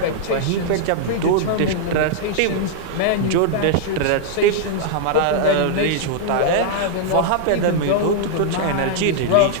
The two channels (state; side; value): different; both; correlation -0.01